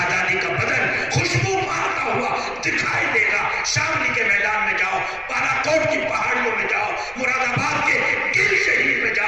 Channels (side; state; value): right; noise; rumble, 21 dB below the sound